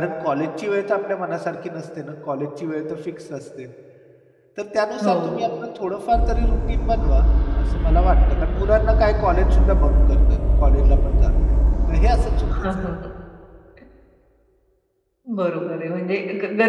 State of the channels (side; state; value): both; identical; correlation 1.00